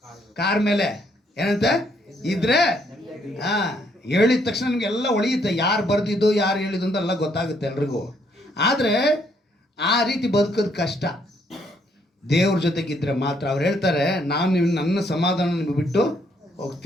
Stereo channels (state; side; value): normal; both; correlation 0.70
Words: ಕಾರ್ ಮೇಲೆ ಏನಂತೆ ಇದ್ರೆ ಹೇಳಿದ ತಕ್ಷಣ ನಿಮಗೆಲ್ಲ ಒಳಿಯುತ್ತೆ, ಯಾರು ಬರ್ದಿದ್ದು ಯಾರು ಹೇಳಿದ್ದು ಅಂತ ಎಲ್ಲ ಗೊತ್ತಾಗುತ್ತೆ ಎಲ್ರಿಗೂ. ಆದರೆ ಆ ರೀತಿ ಬದುಕೋದು ಕಷ್ಟ. ದೇವ್ರ ಜೊತೆಗಿದ್ರೆ ಮಾತ್ರ. ಅವ್ರು ಹೇಳ್ತಾರೆ, ನಾನು ನನ್ನ ಸಮಾಧಾನ ನಿಮಗೆ ಬಿಟ್ಟು